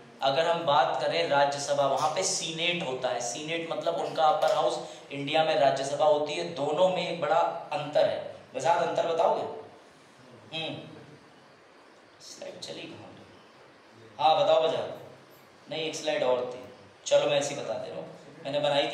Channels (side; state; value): both; identical; correlation 1.00